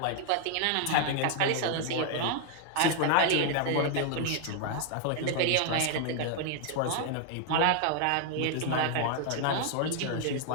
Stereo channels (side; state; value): both; different; correlation 0.00